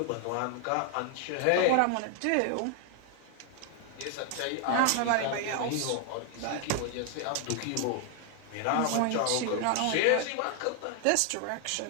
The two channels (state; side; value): different; both; correlation 0.00